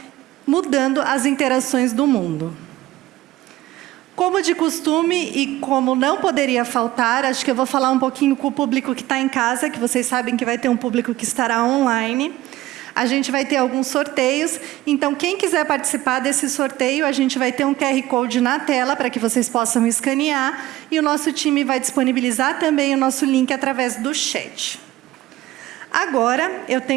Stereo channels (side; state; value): left; quieter; 16.5 dB